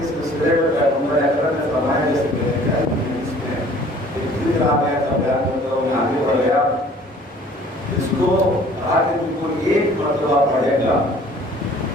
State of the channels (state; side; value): normal; both; correlation 0.53